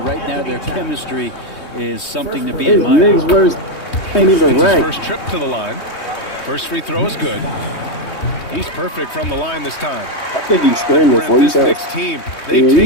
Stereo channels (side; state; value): right; late; 3.2 ms